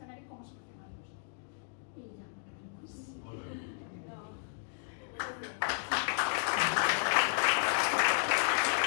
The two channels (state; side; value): silent; right; digital silence